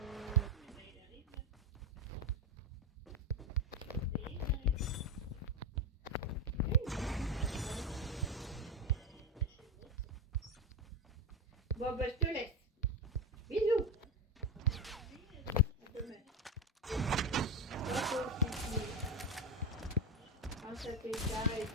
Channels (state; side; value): normal; both; correlation 0.13